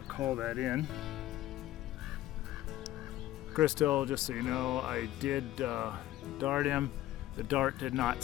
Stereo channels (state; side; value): quieter; right; 14.7 dB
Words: to call that in. Crystal, just so you know, I did dart him. The dart did not